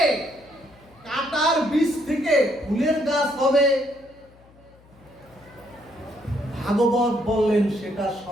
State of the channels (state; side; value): noise; left; hum, 27 dB below the sound